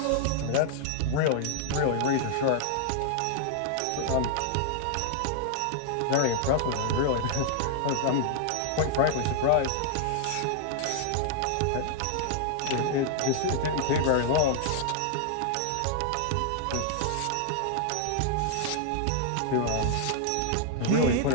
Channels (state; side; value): different; both; correlation -0.01